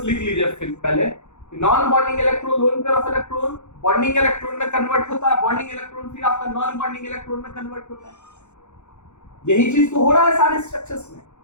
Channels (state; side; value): late; right; 0.83 ms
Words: लिख लीजिए फिर पहले, non bonding electron lone pair of electron bonding electron में कन्वर्ट होता है, बॉन्डिंग इलेक्ट्रॉन फिर आपका नॉन बॉन्डिंग इलेक्ट्रॉन में कन्वर्ट होता है। यही चीज तो हो रहा है सारे स्ट्रक्चर्स में।